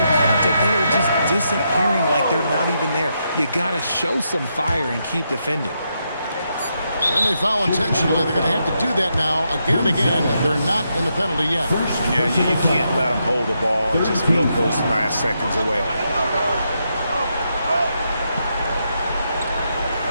contact, they are just disappearing like they're not even there. You got to show some fire and keep defending. And they foul intentionally. They're going to have to do that now again and again. They're not in the penalty yet. Yeah, you can't let them hold the ball and just milk those last seconds away.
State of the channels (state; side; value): inverted; both; correlation -0.82